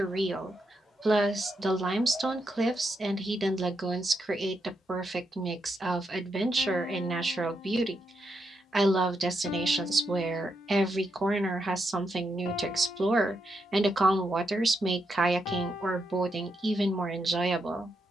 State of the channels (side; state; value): both; normal; correlation 0.82